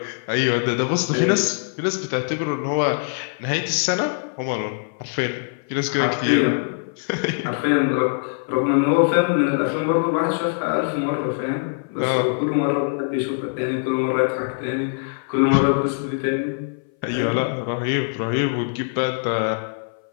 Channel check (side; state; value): right; silent; 59 dB below the other